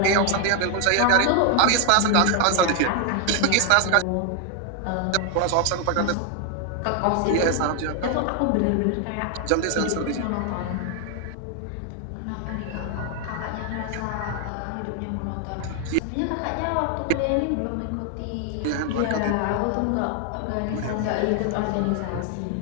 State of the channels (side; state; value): both; different; correlation 0.01